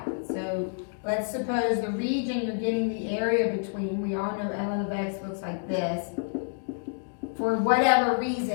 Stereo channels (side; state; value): right; silent; digital silence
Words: So let's suppose the region you're getting the area between, we all know ln of x looks like this, for whatever